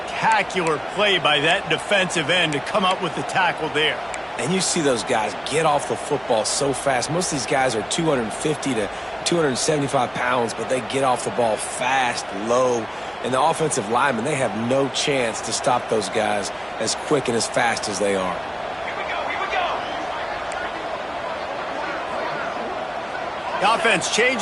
play by that defensive end to come up with the tackle there. And you see those guys get off the football so fast. Most of these guys are 250 to 275 pounds, but they get off the ball fast, low. And the offensive linemen, they have no chance to stop those guys as quick and as fast as they are. The offense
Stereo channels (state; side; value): identical; both; correlation 1.00